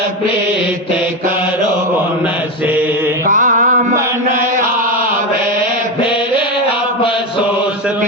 प्रीत करो उनसे कामन आवे फिर अफसोस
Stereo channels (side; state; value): both; normal; correlation 0.14